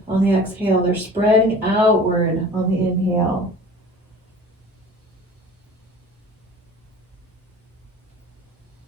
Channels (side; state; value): both; normal; correlation 0.43